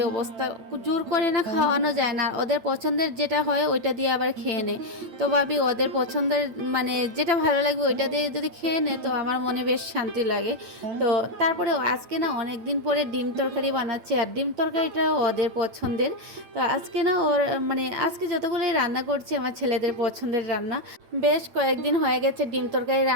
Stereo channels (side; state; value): left; late; 8.9 ms